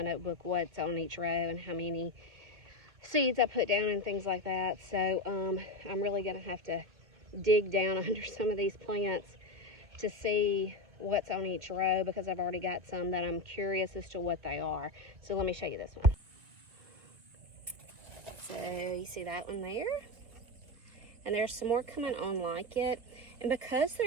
notebook what's on each row and how many seeds I put down and things like that. So I'm really gonna have to dig down under some of these plants to see what's on each row, because I've already got some that I'm curious as to what they are. So let me show you this one. So you see that one there? And there's some more coming on like it. And because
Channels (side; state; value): left; late; 2.3 ms